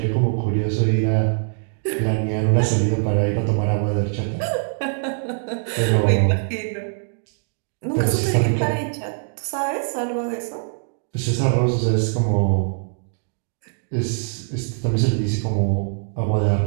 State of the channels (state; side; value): silent; left; digital silence